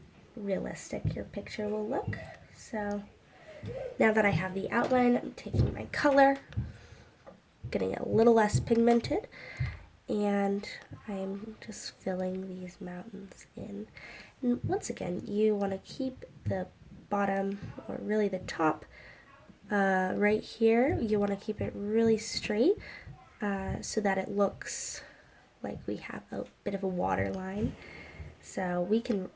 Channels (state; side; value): identical; both; correlation 1.00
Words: realistic your picture will look. So now that I have the outline, I'm taking my color, getting it a little less pigmented, and I'm just filling these mountains in. And once again, you want to keep the bottom, or really the top, right here. You want to keep it really straight so that it looks like we have a bit of a water line. So we can